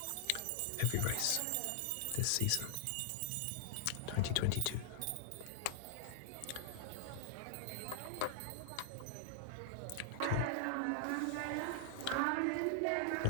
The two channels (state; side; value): different; both; correlation 0.00